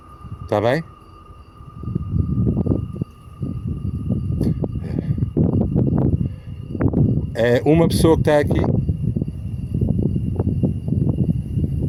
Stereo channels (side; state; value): both; identical; correlation 1.00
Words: Está bem? É uma pessoa que está aqui.